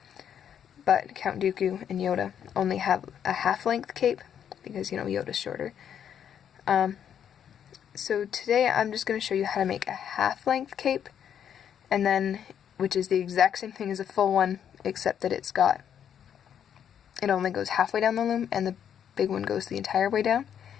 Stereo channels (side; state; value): right; quieter; 8.9 dB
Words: but Count Dooku and Yoda only have a half-length cape because, you know, Yoda's shorter. So today I'm just going to show you how to make a half-length cape, and then, which is the exact same thing as a full one, except that it only goes halfway down the loom, and the big one goes the entire way down.